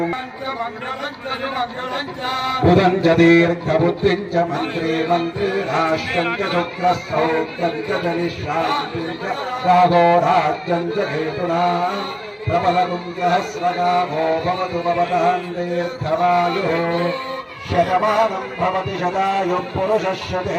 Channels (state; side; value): identical; both; correlation 1.00